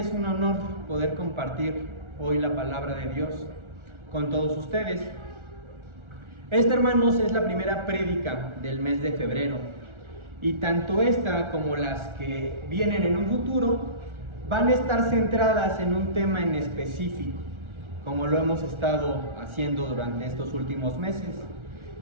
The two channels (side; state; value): left; late; 1.4 ms